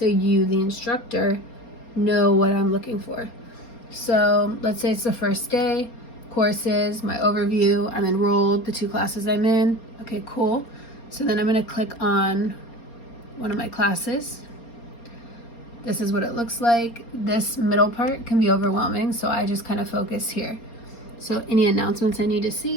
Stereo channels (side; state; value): right; late; 4.3 ms